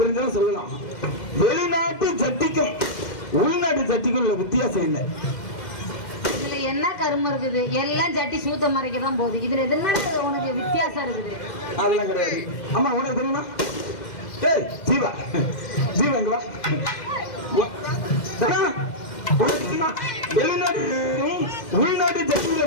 தெரிஞ்சாலும் சொல்லலாம். வெளிநாட்டு சட்டிக்கும் உள்நாட்டு சட்டிக்கும் உள்ள வித்தியாசம் என்ன? இதுல என்ன கருமம் இருக்குது? எல்லாம் சட்டி சூத்த மறைக்கதான் போகுது. இதுல என்ன உனக்கு வித்தியாசம் இருக்குது? அதெல்லாம் கிடையாது. அம்மா உனக்கு தெரியுமா? ஜீவா எங்க வா. வெளிநாட்டு உள்நாட்டு சட்டிக்குள்ள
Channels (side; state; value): right; late; 2.1 ms